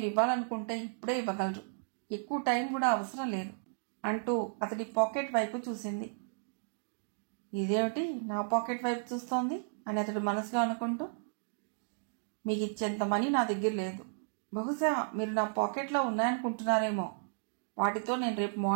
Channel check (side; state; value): left; silent; digital silence